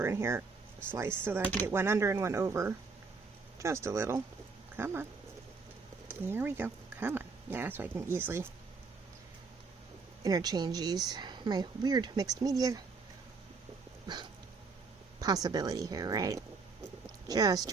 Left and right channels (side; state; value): left; quieter; 4.6 dB